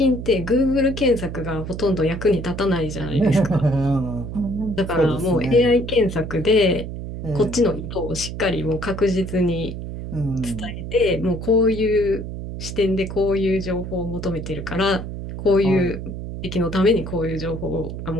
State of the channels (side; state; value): right; noise; hum, 7 dB below the sound